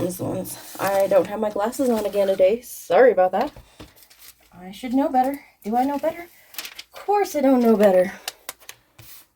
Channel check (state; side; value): identical; both; correlation 1.00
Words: the ones. I don't have my glasses on again today. Sorry about that. I should know better. Do I know better? Of course I don't know better.